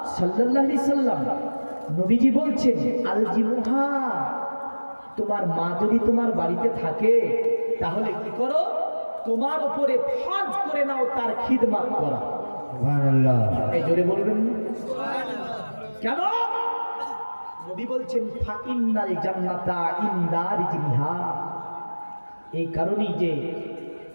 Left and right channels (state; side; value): inverted; both; correlation -1.00